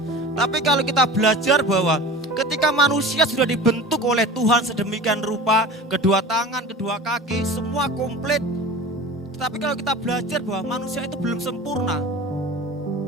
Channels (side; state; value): both; normal; correlation 0.36